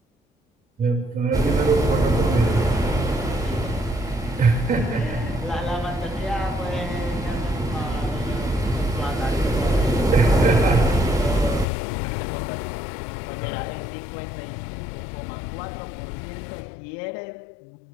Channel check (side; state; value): right; drops out; at 11.7 s